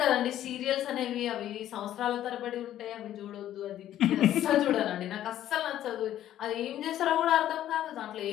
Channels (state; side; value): quieter; right; 12.2 dB